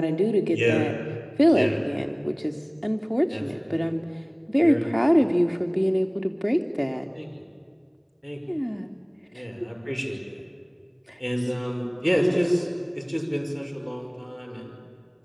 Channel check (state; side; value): identical; both; correlation 1.00